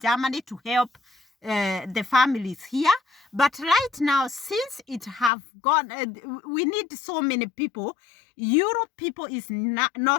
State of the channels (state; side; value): drops out; right; at 5.3 s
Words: to help the families here. But right now, since it have gone, we need so many people. Europe people is